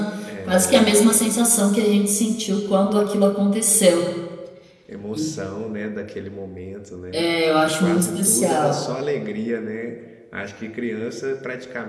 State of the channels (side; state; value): both; identical; correlation 1.00